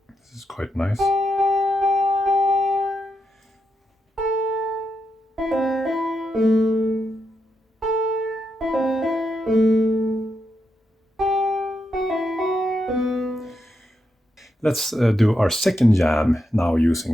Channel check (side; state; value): both; normal; correlation 0.84